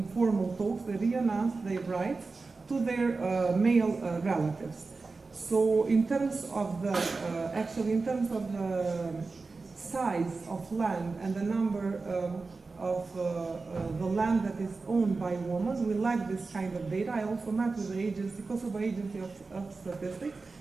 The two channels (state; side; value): quieter; left; 4.0 dB